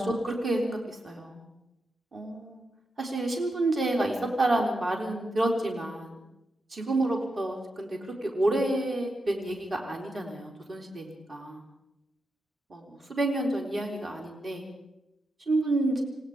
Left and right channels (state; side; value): normal; both; correlation 0.86